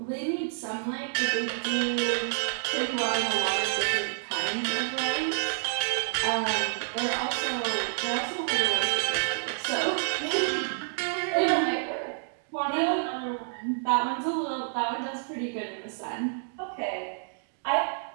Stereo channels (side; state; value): left; silent; digital silence